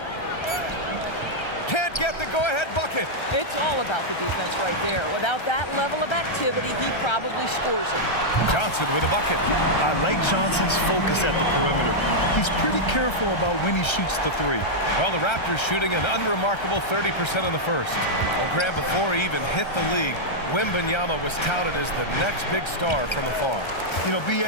Can't might get the go-ahead bucket. It's all about the defense right there. Without that level of activity, he probably scores it. Johnson with a bucket. I like Johnson's focus at the perimeter. He's pretty careful about when he shoots the three. Well, the Raptors shooting an unremarkable 30% in the first. Well, Grant, before he even hit the league, Wembanyama was touted as the next big star from afar. You know,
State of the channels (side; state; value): right; late; 1.3 ms